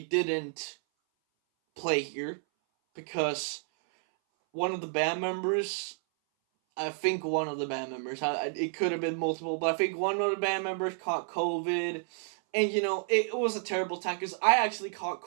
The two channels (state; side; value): silent; left; 57 dB below the other